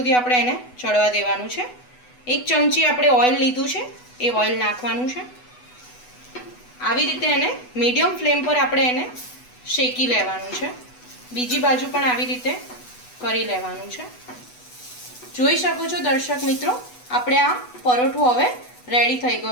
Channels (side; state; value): right; late; 8.1 ms